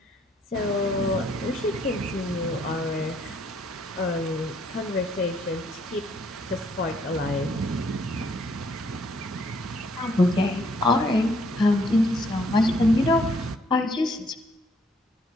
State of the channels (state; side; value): normal; both; correlation 0.67